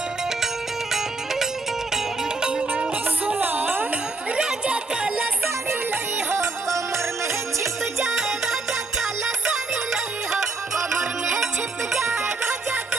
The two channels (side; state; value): left; quieter; 3.7 dB